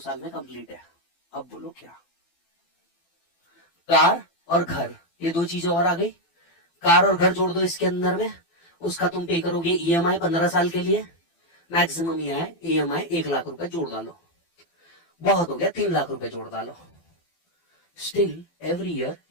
में कंप्लीट है। अब बोलो क्या? कार और घर, ये 2 चीजें और आ गई। कार और घर जोड़ दो इसके अंदर में, उसका तुम पे करोगे ईएमआई 15 साल के लिए, मैक्सिमम ईएमआई 1 लाख रुपए जोड़ डालो, बहुत हो गया 3 लाख रुपए जोड़ डालो। Still every year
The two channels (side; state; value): right; late; 12 ms